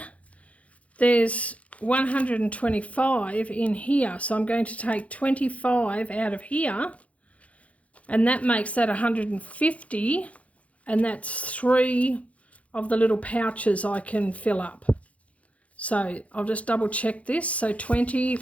there's 125 in here. So I'm going to take 25 out of here, and that makes that 150, and that's 3 of the little pouches I can fill up. So I'll just double check this. So 20,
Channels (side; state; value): right; late; 0.065 ms